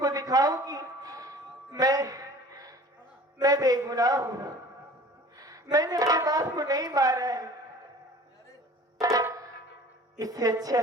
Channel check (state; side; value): normal; both; correlation 0.45